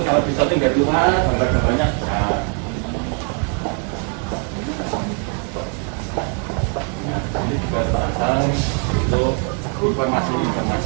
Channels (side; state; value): left; quieter; 39.4 dB